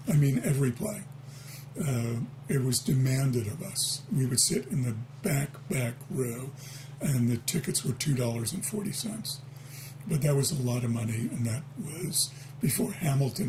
I mean, every play. It was demanded of us. We would sit in the back row, and the tickets were $2.40. But that was a lot of money, and that was before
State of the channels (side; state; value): both; identical; correlation 1.00